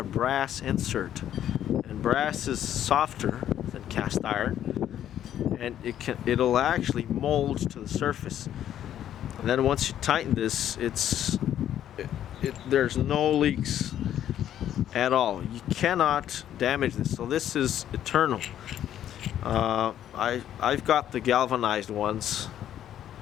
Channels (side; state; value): right; quieter; 11.0 dB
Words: brass insert, and brass is softer than cast iron, and it'll actually mold to the surface. And then once you tighten this, there's no leaks at all. You cannot damage this. So this is eternal. I've got the galvanized ones,